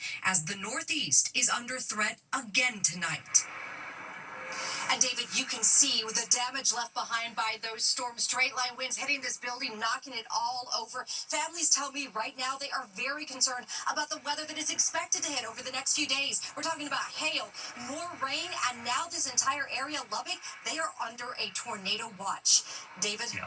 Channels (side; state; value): both; identical; correlation 1.00